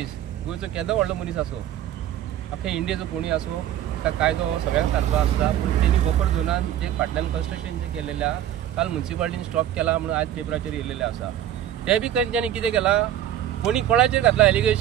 गोंयचो केदो व्हडलो मनीस आसो अख्ख्या इंडियेचो कोणी आसो ताका कायदो सगळ्यांक सारको आसता। पूण तेणी बफर झोनान जे फाटल्यान कन्स्ट्रक्शन जे केलेलें आसा काल म्युन्सिपालिटीन स्टॉप केला म्हणून आज पेपराचेर येयलेलें आसा। ते बी तेंच्यांनी कितें केलां, कोणी कोणाचेर घातला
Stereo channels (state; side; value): quieter; left; 11.5 dB